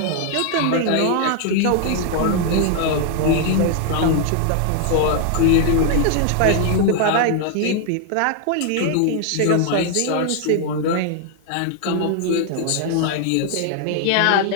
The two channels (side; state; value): both; different; correlation 0.00